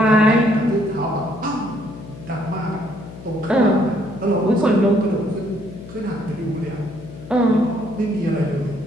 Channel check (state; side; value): noise; left; hum, 15 dB below the sound